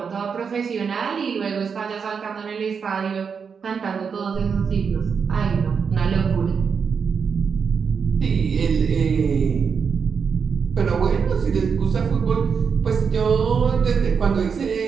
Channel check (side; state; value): left; quieter; 6.1 dB